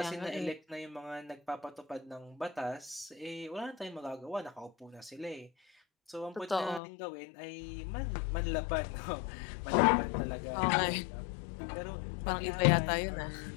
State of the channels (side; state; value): right; drops out; at 6.8 s